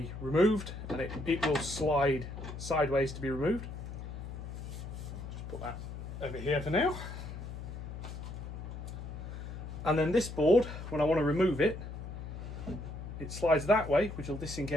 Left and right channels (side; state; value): left; noise; hum, 8 dB below the sound